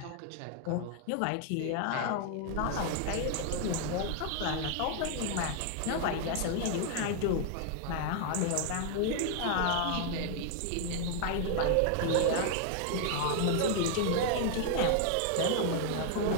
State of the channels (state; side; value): different; both; correlation 0.00